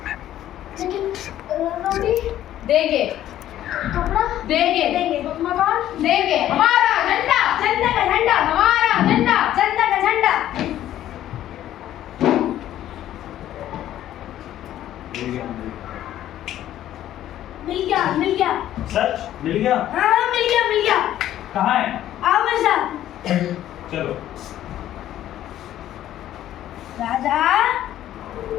लेकिन रोटी देंगे, कपड़ा देंगे, देंगे, मकान देंगे, हमारा झंडा, जनता का झंडा, हमारा झंडा। जनता का झंडा। मिल गया, मिल गया। सच मिल गया? हाँ मिल गया, मिल गया। कहाँ है? आओ मेरे साथ। चलो। राजा,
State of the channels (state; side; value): quieter; right; 12.5 dB